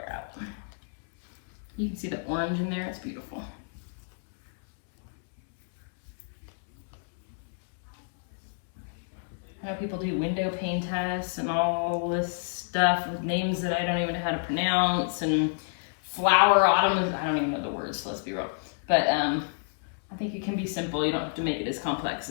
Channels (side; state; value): right; silent; 59 dB below the other